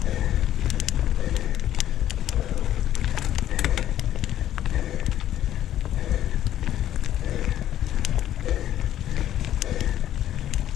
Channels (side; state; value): right; quieter; 11.9 dB